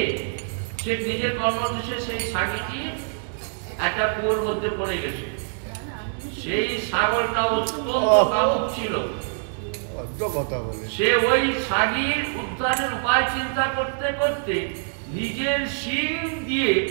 সে নিজের কর্মদোষে সেই ছাগিটি একটা কুয়োর মধ্যে পড়ে গেছে। সেই ছাগলটা অত্যন্ত কামুক ছিল। সে ওই ছাগির উদ্ধারের উপায় চিন্তা করতে করতে নিজের শিং দিয়ে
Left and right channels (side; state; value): left; silent; digital silence